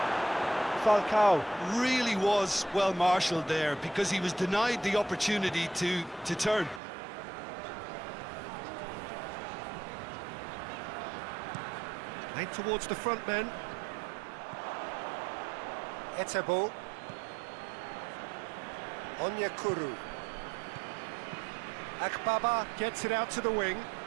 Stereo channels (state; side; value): drops out; left; at 6.8 s